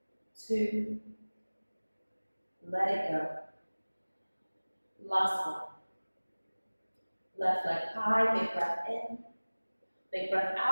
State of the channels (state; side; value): inverted; both; correlation -1.00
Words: 2. Let it go. Last one. Left leg high, big breath in. Big breath